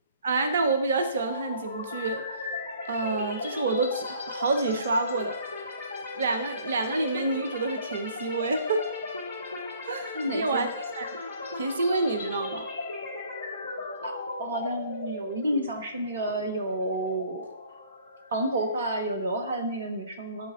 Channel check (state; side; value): inverted; both; correlation -0.57